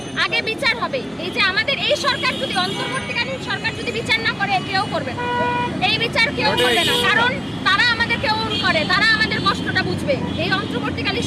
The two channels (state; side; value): identical; both; correlation 1.00